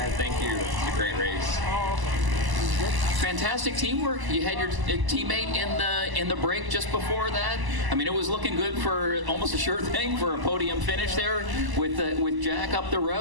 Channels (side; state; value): left; late; 1.0 ms